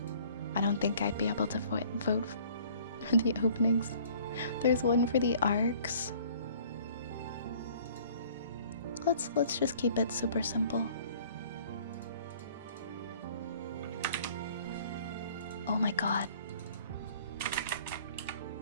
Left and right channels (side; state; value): both; inverted; correlation -0.53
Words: I don't think I'd be able to vote for the openings. There's one for the arcs. Let's just keep it super simple. Oh my god.